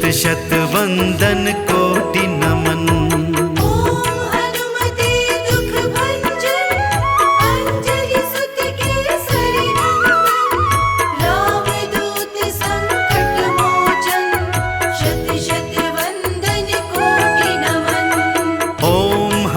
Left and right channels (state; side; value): identical; both; correlation 1.00